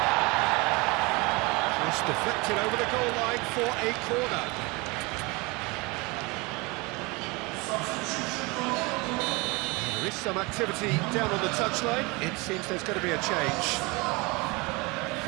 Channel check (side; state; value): left; quieter; 26.0 dB